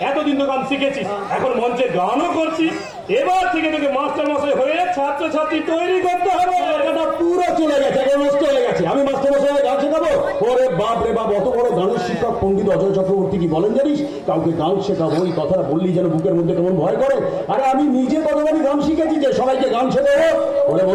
এতদিন তো গান শিখেছিস, এখন মঞ্চে গানও করছিস, এবার থেকে তোকে মাস্টার মশাই হয়ে ছাত্র ছাত্রী তৈরি করতে হবে। এটা পুরো চলে গেছে, এখন নষ্ট হয়ে গেছে। আমি মাস্টার মশাই গান শেখাবো? ওরে বাপ রে বাপ, অত বড় গানের শিক্ষক পণ্ডিত অজয় চক্রবর্তী কি বলেন জানিস? কাউকে গান শেখাবো, এই কথাটা বললি যেন বুকের মধ্যে কেমন ভয় করে। আরে আমি নিজে কতবারই গান শিখেছি যে সবাইকে গান শেখাবো। ওরে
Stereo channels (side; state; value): both; identical; correlation 1.00